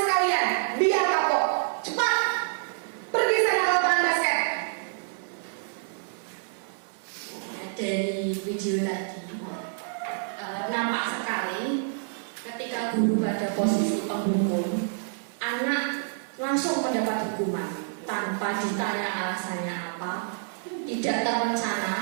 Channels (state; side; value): silent; left; 60 dB below the other